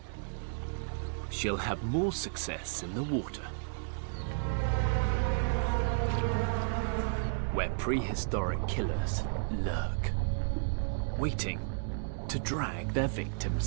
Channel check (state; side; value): silent; left; digital silence